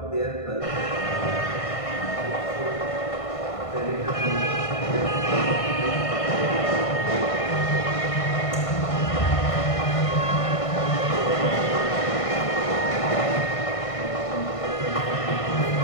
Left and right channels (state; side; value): late; right; 1.6 ms